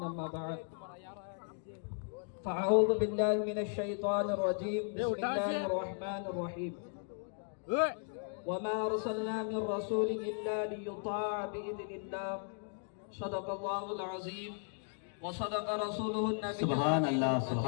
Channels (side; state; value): right; silent; 54 dB below the other